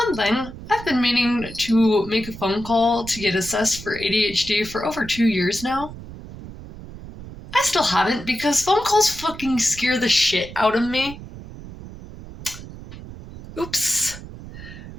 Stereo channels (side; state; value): right; noise; rumble, 14 dB below the sound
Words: thing, I've been meaning to make a phone call to get assessed for ADHD for over 2 years now. I still haven't because phone calls fucking scare the shit out of me. Oops.